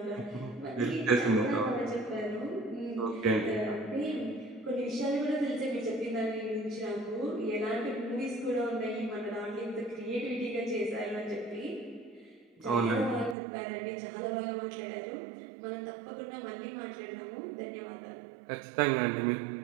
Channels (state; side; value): drops out; left; at 13.4 s